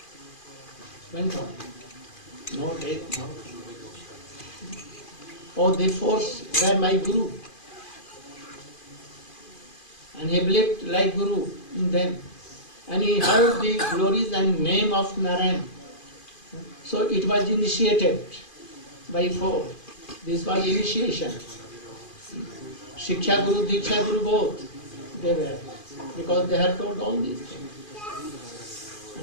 went on. No death, no. Oh, the force were my Guru. And he believed like Guru in them. And he heard the glories and name of Narayan. So it was initiated by four. This was initiation. Shiksha Guru, Diksha Guru both, they were. Because they had told all these things.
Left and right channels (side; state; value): right; late; 2.4 ms